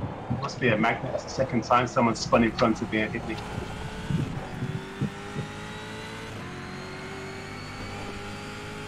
Must be a magnet. That's the second time someone spun in front of me and hit me.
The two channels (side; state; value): both; identical; correlation 1.00